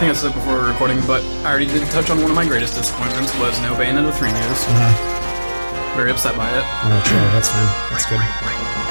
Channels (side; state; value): both; inverted; correlation -1.00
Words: I said it before recording, but I already did touch on one of my greatest disappointments was no Bayonetta 3 news. very upset by it. Oh, sure, that's fine. That's good.